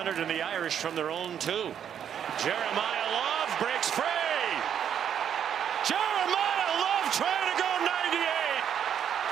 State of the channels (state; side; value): quieter; left; 8.9 dB